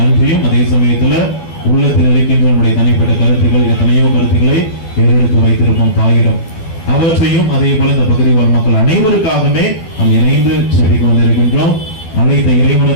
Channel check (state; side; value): late; right; 12 ms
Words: அதே சமயத்துல உள்ளத்தில் இருக்கின்ற நம்முடைய தனிப்பட்ட கருத்துக்கள், எத்தனையோ கருத்துக்களை ஏறெடுத்து வைத்திருப்போம் தாயிடம், அவற்றையும் அதே போல இந்த பகுதி வாழ் மக்கள் அனைவருக்காகவே நாம் இணைந்து செடிக்கு வந்திருக்கின்றோம். அனைத்த